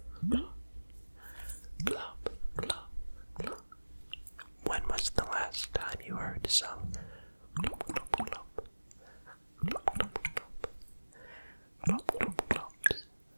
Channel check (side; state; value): both; inverted; correlation -1.00